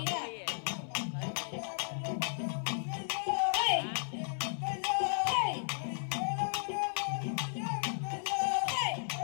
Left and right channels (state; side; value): silent; right; 55 dB below the other